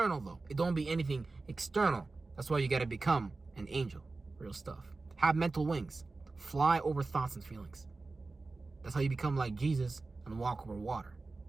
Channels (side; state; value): left; quieter; 3.6 dB